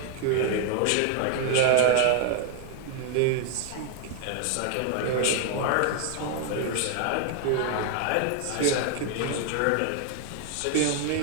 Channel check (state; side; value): different; both; correlation 0.00